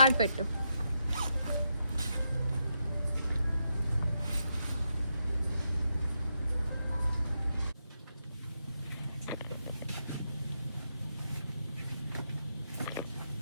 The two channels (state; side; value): inverted; both; correlation -0.83